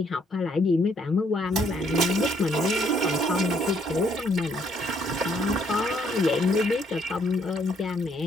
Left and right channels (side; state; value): both; normal; correlation 0.69